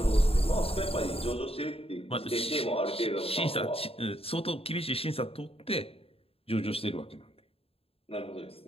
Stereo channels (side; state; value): right; late; 0.28 ms